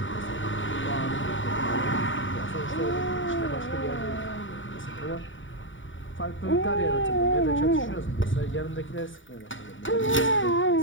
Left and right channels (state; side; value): late; right; 0.56 ms